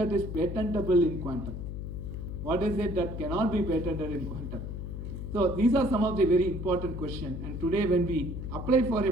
is patentable in quantum? What is it that cannot be patented in quantum? So these are some of the very important questions. And today when we apply for a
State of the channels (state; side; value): noise; left; hum, 6 dB below the sound